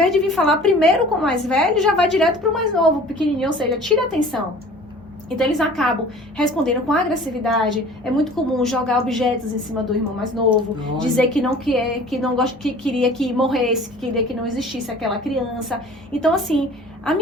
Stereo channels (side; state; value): both; normal; correlation 0.46